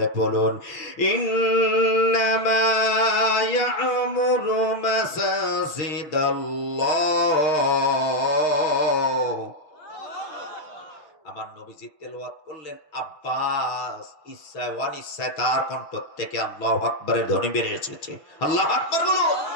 বলুন, ইন্নামা ইয়া'মুরু মাসাজিদাল্লাহ। আমার নবীজি তেলাওয়াত করলেন, আব্বাস ইচ্ছায় অনিচ্ছায় তার কণ্ঠ থেকে আল্লাহু আকবারের ধ্বনি বেরিয়ে এসেছে। আল্লাহু আকবার বলুন।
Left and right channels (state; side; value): late; right; 6.5 ms